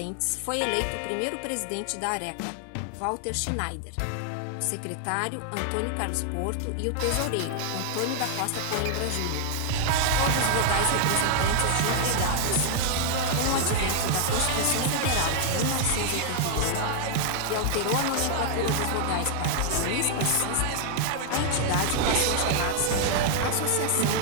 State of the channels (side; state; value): both; different; correlation -0.01